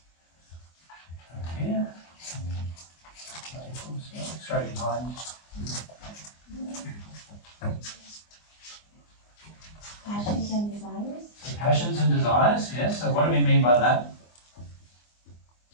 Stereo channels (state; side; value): late; right; 24 ms